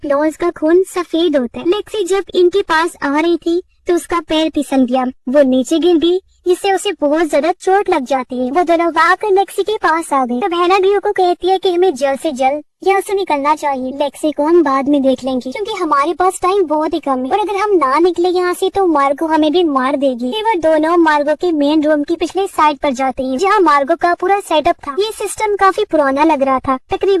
का खून सफेद होता है। लेक्सी जब इनके पास आ रही थी तो उसका पैर फिसल गया, वो नीचे गिर गई, जिससे उसे बहुत ज्यादा चोट लग जाती है। वो दोनों भागकर लेक्सी के पास आ गए। तब हैना ड्रियो को कहती है कि हमें जल्द से जल्द यहाँ से निकलना चाहिए, लेक्सी को हम बाद में देख लेंगे क्योंकि हमारे पास टाइम बहुत ही कम है और अगर हम ना निकले यहाँ से तो मार्गो हमें भी मार देगी। फिर वो दोनों मार्गो के मेन रूम की पिछले साइड पर जाते हैं, जहाँ मार्गो का पूरा सेटअप था। ये सिस्टम काफी पुराना लग रहा था,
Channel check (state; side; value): identical; both; correlation 1.00